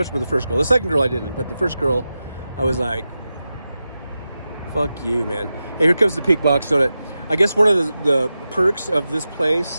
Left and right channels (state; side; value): inverted; both; correlation -0.92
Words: with the first girl. The second girl I didn't, but the first girl, I was like, fuck you, man. Hey, here comes the Pink Box Donut. I guess one of the perks of this